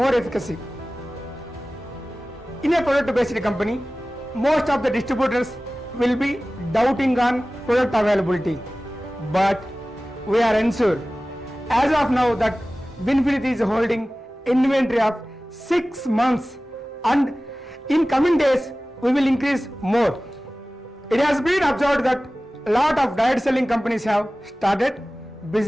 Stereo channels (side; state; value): both; normal; correlation 0.97